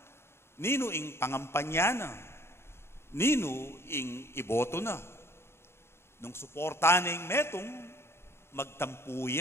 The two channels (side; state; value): right; late; 0.12 ms